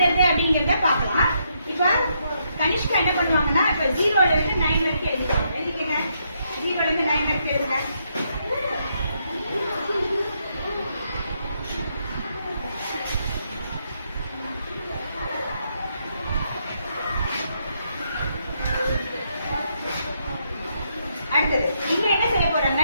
அப்படிங்கறத பார்க்கலாம். இப்போ கனிஷ்கா என்ன பண்ணுவாங்கன்னா இப்போ 0 ல இருந்து 9 வரைக்கும் எழுதுவாங்க. எழுதிக்கங்க. 0 ல இருந்து 9 வரைக்கும் எழுதுங்க. அடுத்தது இங்க என்ன செய்ய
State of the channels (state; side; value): inverted; both; correlation -0.77